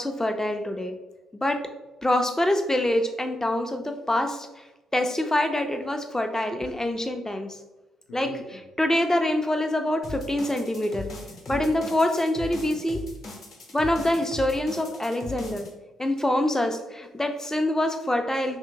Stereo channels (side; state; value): both; normal; correlation 0.88